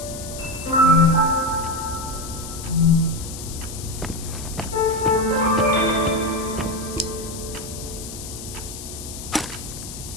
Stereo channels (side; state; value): left; noise; hiss, 11 dB below the sound